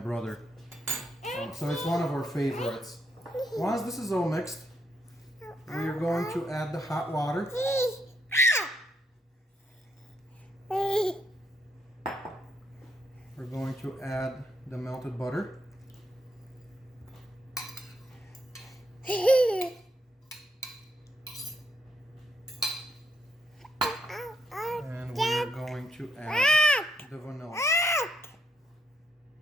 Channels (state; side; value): normal; both; correlation 0.77